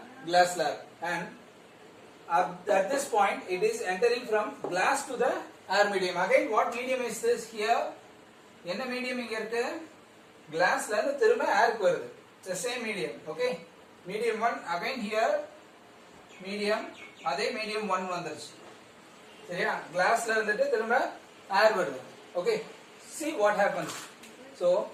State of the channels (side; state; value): both; identical; correlation 1.00